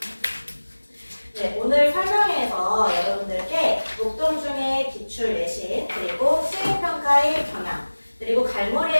네, 오늘 설명회에서 여러분들께 목동중의 기출 내신 그리고 수행평가의 경향 그리고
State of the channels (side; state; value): both; inverted; correlation -1.00